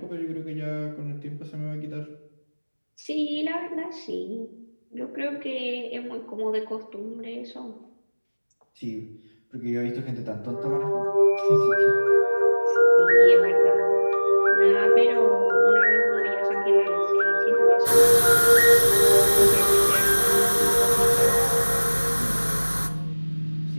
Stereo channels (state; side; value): inverted; both; correlation -1.00